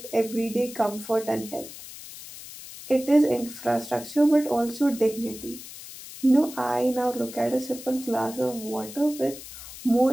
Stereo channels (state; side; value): noise; left; hiss, 14 dB below the sound